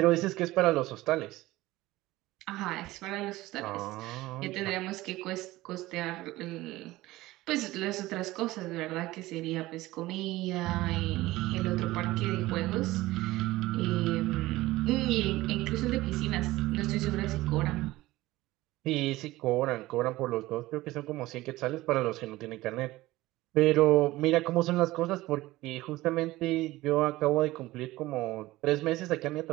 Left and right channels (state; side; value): quieter; left; 18.0 dB